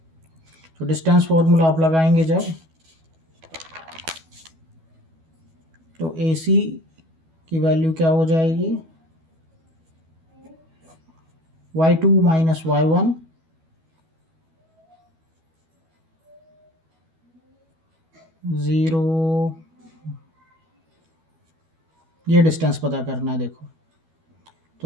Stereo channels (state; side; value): late; left; 12 ms